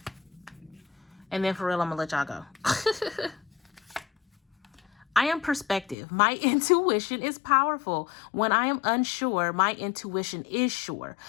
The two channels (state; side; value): drops out; right; at 6.0 s